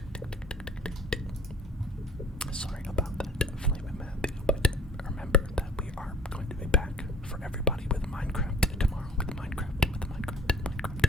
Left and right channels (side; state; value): both; normal; correlation 0.52